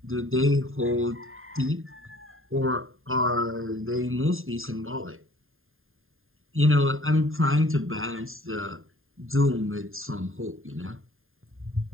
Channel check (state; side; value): late; left; 0.60 ms